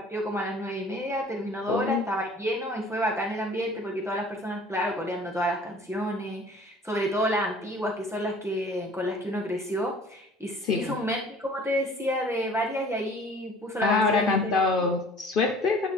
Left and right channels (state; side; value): normal; both; correlation 0.49